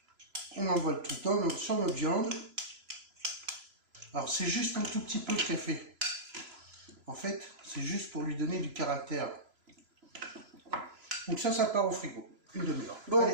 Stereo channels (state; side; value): late; left; 3.0 ms